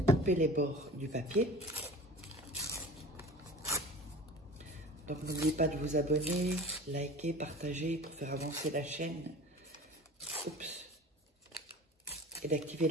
couper les bords du papier. Donc n'oubliez pas de vous abonner, liker, partager pour faire avancer la chaîne. Oups. Et d'activer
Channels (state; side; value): normal; both; correlation 0.39